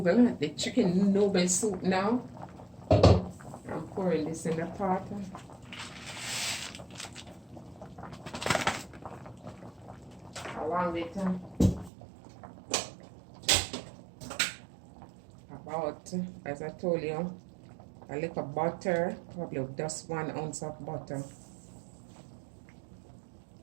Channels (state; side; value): drops out; left; at 11.9 s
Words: the chicken noodle soup now. I'm pouring this in the pot. Along with about, as I told you, a little butter, probably just 1 ounce of butter.